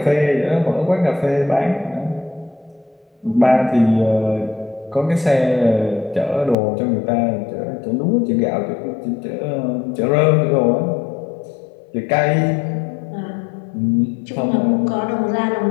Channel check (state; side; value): drops out; right; at 6.6 s